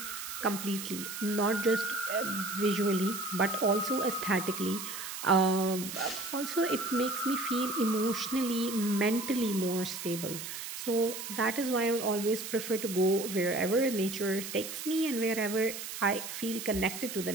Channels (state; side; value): noise; right; hiss, 8 dB below the sound